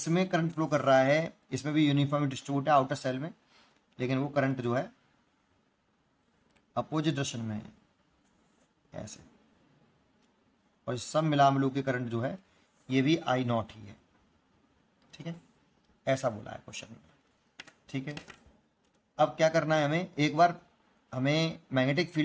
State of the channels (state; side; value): identical; both; correlation 1.00